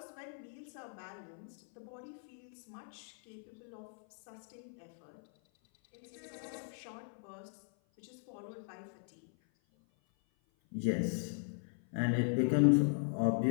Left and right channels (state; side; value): silent; right; 52 dB below the other